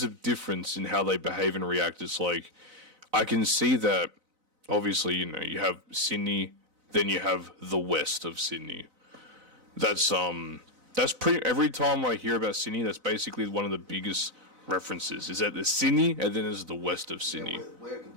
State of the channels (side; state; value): left; late; 4.0 ms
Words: a difference in how they behave and react. It's like I can see that obviously, you have Sydney, then you have the west of Sydney. That's pretty every time I hear about Sydney, that's basically one of the biggest references. Is that the Sydney and then there's the west of Sydney. Yeah, we're a